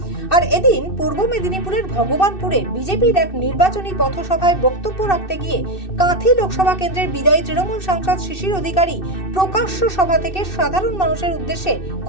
আর এদিন পূর্ব মেদিনীপুরের ভগবানপুরে বিজেপির এক নির্বাচনী পথসভায় বক্তব্য রাখতে গিয়ে কাঁথি লোকসভা কেন্দ্রের বিদায়ী তৃণমূল সাংসদ শিশির অধিকারী প্রকাশ্য সভা থেকে সাধারণ মানুষের উদ্দেশ্যে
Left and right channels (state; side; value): late; right; 2.6 ms